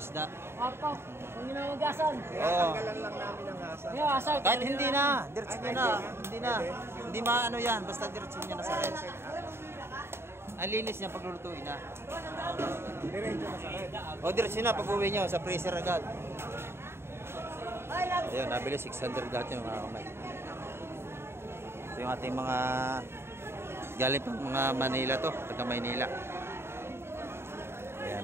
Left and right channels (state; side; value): late; left; 0.12 ms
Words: Papa, kung ginawagasan. Oo. Yung asal. Kahit hindi na, diretso nyo na. Hindi na. Hindi maano yan, basta diretso nyo na sa rep. Ang linis niya pag lulutuin na. O diretso na pag uwi nyo, sa freezer agad. Ayun, nabili 600 lahat yung mga kamay. Ito yung ating mga galing pang mga Manila to, taga Maynila. Ayan,